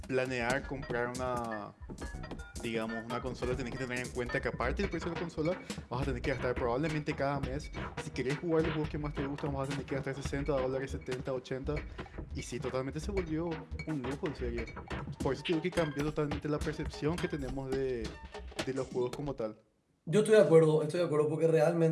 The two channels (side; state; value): both; identical; correlation 1.00